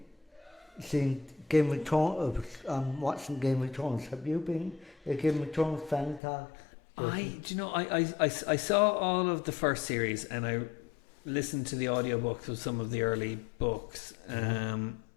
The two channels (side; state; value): right; drops out; at 6.2 s